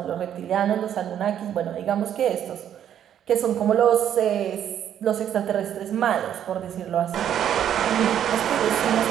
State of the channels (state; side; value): quieter; left; 10.0 dB